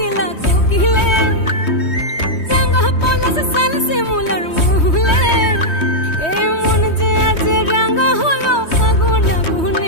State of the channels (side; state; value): right; late; 3.2 ms